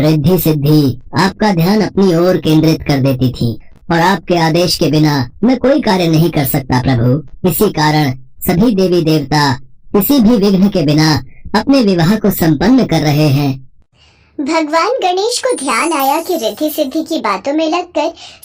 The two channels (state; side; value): identical; both; correlation 1.00